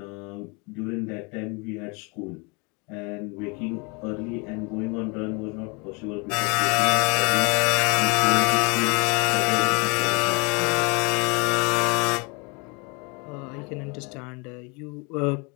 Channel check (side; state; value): right; quieter; 30.8 dB